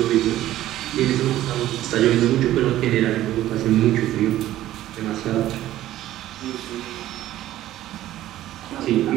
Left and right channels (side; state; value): left; quieter; 14.0 dB